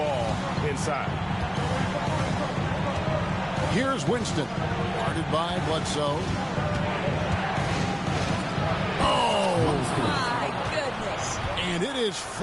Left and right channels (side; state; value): both; identical; correlation 1.00